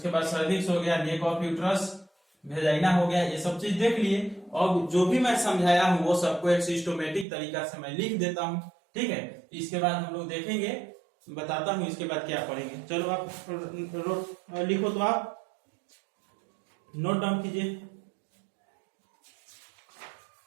बाद सर्विक्स हो गया, नेक ऑफ यूट्रस, वेजाइना हो गया, ये सब चीज देख लिए। और जो भी मैं समझाया हूँ वो सबको एक सिस्टमेटिक तरीका से मैं लिख देता हूँ। ठीक है, इसके बाद हम लोग देखेंगे, बताता हूँ इसके बाद क्या पढ़ेंगे। चलो आप लिखो, तो आप नोट डाउन कीजिए।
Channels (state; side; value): drops out; left; at 7.2 s